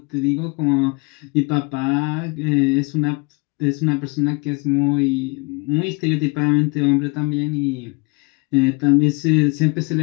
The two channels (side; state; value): right; quieter; 29.0 dB